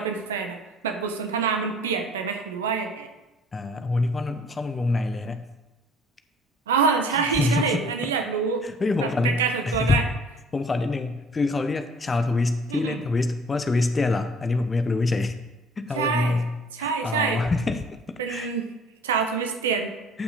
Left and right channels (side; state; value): both; normal; correlation 0.52